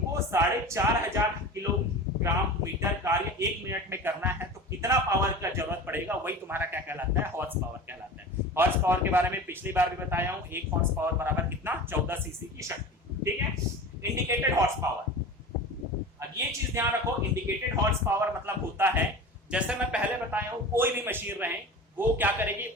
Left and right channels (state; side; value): normal; both; correlation 0.34